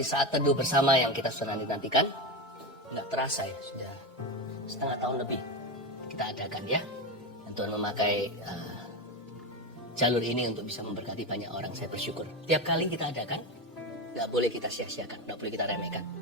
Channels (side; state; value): both; normal; correlation 0.17